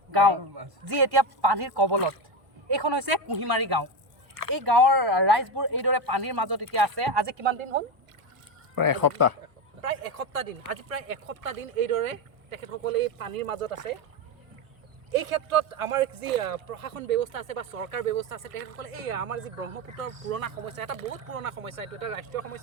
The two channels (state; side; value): late; left; 1.0 ms